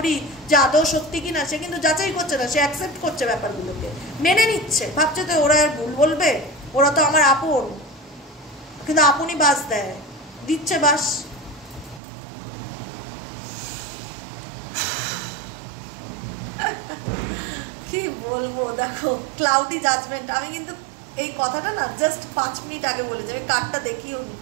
যে আদৌ সত্যি কিনা। সে কিন্তু যাচাই করছে না, সে অ্যাকসেপ্ট করছে ব্যাপারগুলোকে, মেনে নিচ্ছে, ভাবছে তো ওরা আর ভুল বলবে, ওরা তো আমার আপন। কিন্তু আপনই বাস দেয়, দিচ্ছে বাস। কি বলবো, দেখো ক্লাউডি জাজমেন্ট। আমি কিন্তু এই কথাটা না জাস্ট 5 মিনিট আগে বলেছি, আমি কার্ডটা দেখিও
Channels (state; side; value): drops out; left; at 12.0 s